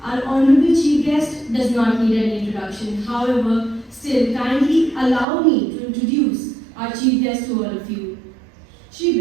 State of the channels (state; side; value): drops out; left; at 5.2 s